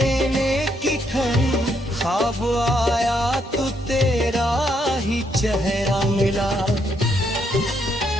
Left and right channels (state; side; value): normal; both; correlation 0.75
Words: की ठहरी, ख्वाब आया तो तेरा ही चेहरा मिला।